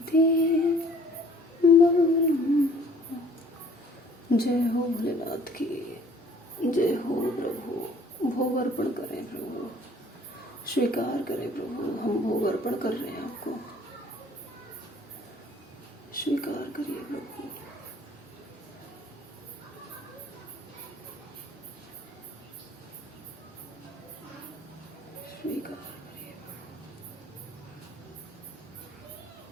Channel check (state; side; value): normal; both; correlation 0.55